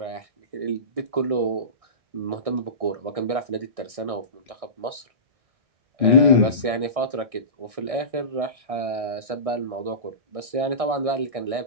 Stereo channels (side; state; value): left; late; 1.6 ms